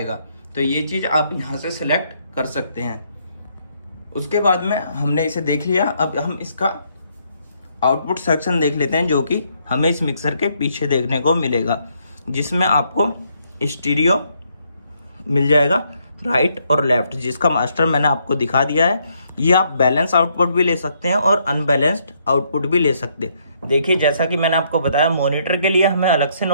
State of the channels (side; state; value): both; inverted; correlation -0.73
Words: तो ये चीज़ आप यहाँ से सेलेक्ट कर सकते हैं। उसके बाद में हमने इसे देख लिया, अब हम इसका आउटपुट सेक्शन देख लेते हैं जो कि हमें इस मिक्सर के पीछे देखने को मिलेगा, जिसमें आपको स्टीरियो मिल जाएगा राइट और लेफ्ट, जिसका मास्टर मैंने आपको दिखा दिया है। ये आप बैलेंस आउटपुट भी ले सकते हैं और अनबैलेंस्ड आउटपुट भी ले सकते हैं। देखिए जैसा कि मैंने आपको बताया मॉनिटर के लिए हमें अलग से